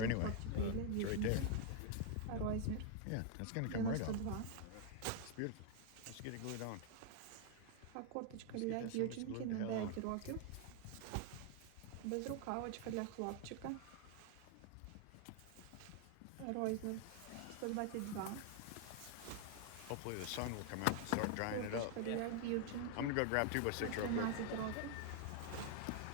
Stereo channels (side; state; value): both; different; correlation 0.00